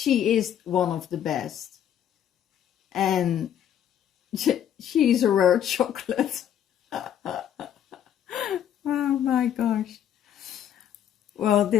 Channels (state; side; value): quieter; right; 9.9 dB